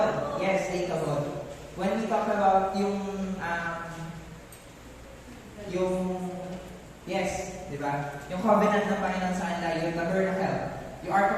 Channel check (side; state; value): both; identical; correlation 1.00